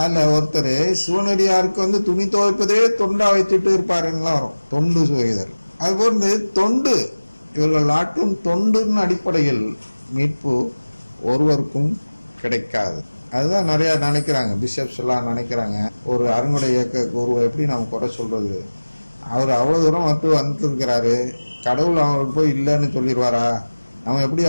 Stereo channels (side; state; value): both; inverted; correlation -1.00